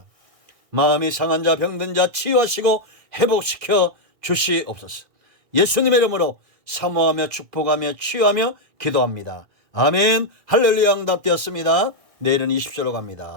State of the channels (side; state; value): left; late; 2.0 ms